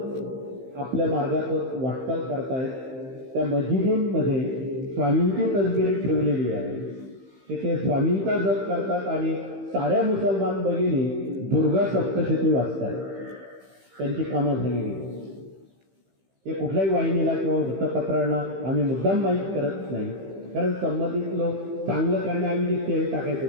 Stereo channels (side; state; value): left; late; 15 ms